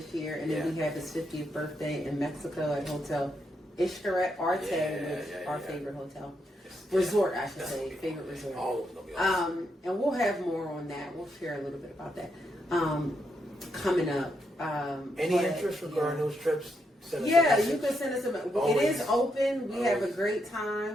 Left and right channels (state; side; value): normal; both; correlation 0.80